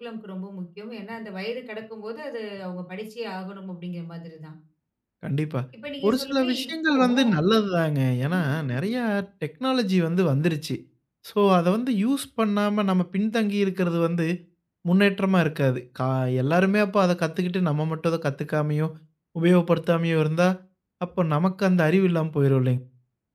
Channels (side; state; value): both; identical; correlation 1.00